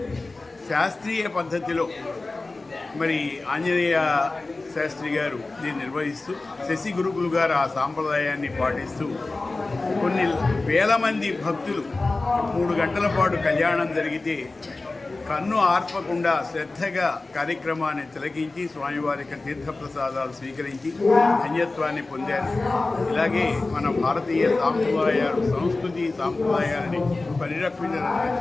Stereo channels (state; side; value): quieter; right; 3.3 dB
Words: శాస్త్రీయ పద్ధతిలో మరి ఆంజనేయ శాస్త్రి గారు దీన్ని నిర్వహిస్తూ, శశి గురుకులు గారు ఆ సాంప్రదాయాన్ని పాటిస్తూ కొన్ని వేల మంది భక్తులు 3 గంటల పాటు కళ్యాణం జరిగితే కన్ను ఆర్పకుండా శ్రద్ధగా కార్యక్రమాన్ని తిలకించి స్వామివారి యొక్క తీర్థప్రసాదాలు స్వీకరించి ధన్యత్వాన్ని పొందారు. ఇలాగే మన భారతీయ సాంప్రదాయాలు, సంస్కృతి సాంప్రదాయాలని